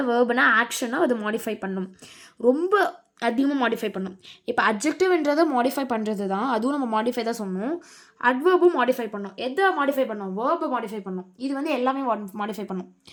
வேர்புனா ஆக்ஷனை அது மாடிஃபை பண்ணும். ரொம்ப அதிகமாக மாடிஃபை பண்ணும். இப்போ அட்ஜெக்டிவ்ன்றதை மாடிஃபை பண்ணுறது தான், அதுவும் நம்ம மாடிஃபை தான் சொன்னோம். அட்வர்பும் மாடிஃபை பண்ணோம். எதை மாடிஃபை பண்ணோம்? வேர்பை மாடிஃபை பண்ணோம். இது வந்து எல்லாமே மாடிஃபை பண்ணும்.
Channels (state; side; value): identical; both; correlation 1.00